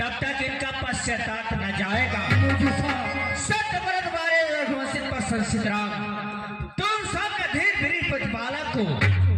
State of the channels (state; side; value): identical; both; correlation 1.00